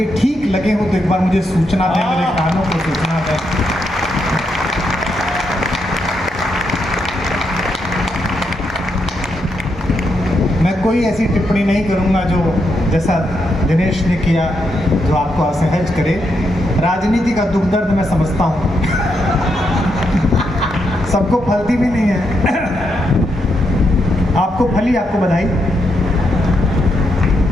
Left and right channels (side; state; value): both; normal; correlation 0.81